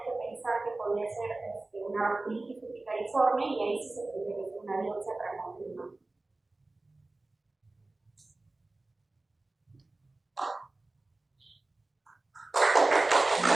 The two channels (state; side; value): quieter; left; 3.1 dB